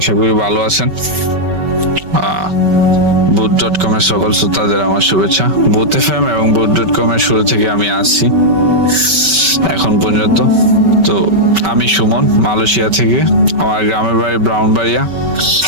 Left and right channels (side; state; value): left; late; 5.2 ms